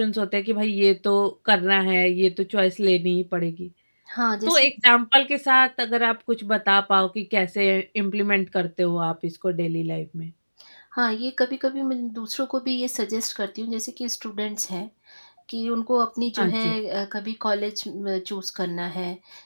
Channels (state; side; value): inverted; both; correlation -1.00